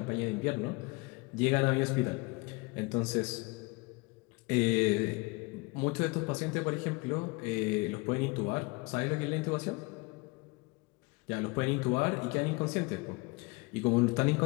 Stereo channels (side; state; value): right; quieter; 26.4 dB